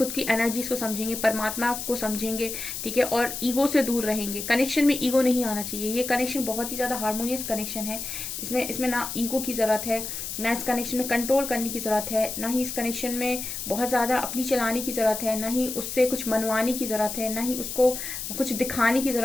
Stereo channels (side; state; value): left; noise; hiss, 6 dB below the sound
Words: की एनर्जीज को समझेंगे, परमात्मा को समझेंगे, ठीक है, और ईगो से दूर रहेंगे। कनेक्शन में ईगो नहीं आना चाहिए। ये कनेक्शन बहुत ही ज्यादा हार्मोनियस कनेक्शन है। इसमें ना ईगो की जरूरत है, ना इस कनेक्शन में कंट्रोल करने की जरूरत है, ना ही इस कनेक्शन में बहुत ज्यादा अपनी चलाने की जरूरत है, ना ही उससे कुछ मनवाने की जरूरत है, ना ही उसको कुछ दिखाने की